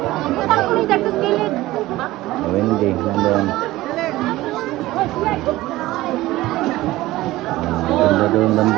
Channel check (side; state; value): left; quieter; 17.4 dB